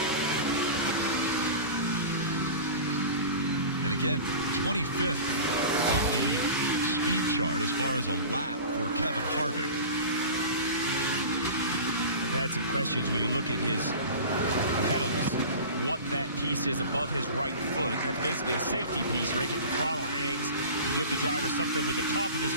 And again, 25th on the speed chart as far as a lap for Kevin Harvick. I've had some questions when you look at his pedals, what that piece is above his right foot. That's basically a safety piece right if the throttle hangs. You give the driver something with the top of his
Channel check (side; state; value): both; inverted; correlation -0.35